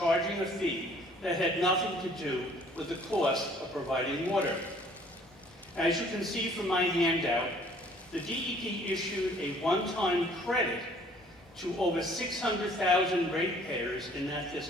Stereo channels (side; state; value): both; normal; correlation 0.57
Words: a fee that had nothing to do with the cost of providing water. As you can see from my handout, the DEP issued a one-time credit to over 600,000 ratepayers in that